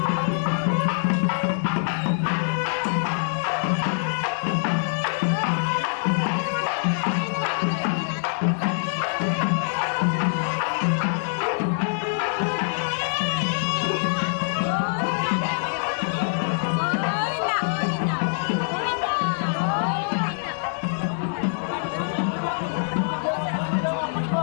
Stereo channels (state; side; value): silent; right; digital silence